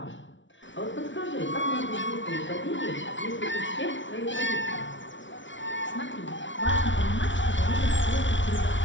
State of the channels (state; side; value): late; right; 0.55 ms